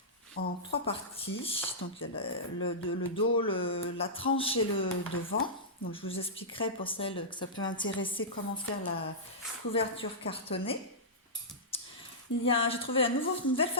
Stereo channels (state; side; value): normal; both; correlation -0.14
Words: en 3 parties. Donc il y a le dos, la tranche et le devant. Donc je vous expliquerai pour celles que ça peut intéresser comment faire la couverture cartonnée. J'ai trouvé une nouvelle